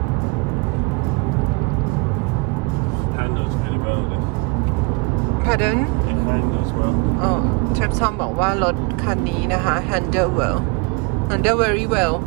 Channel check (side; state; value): left; quieter; 28.7 dB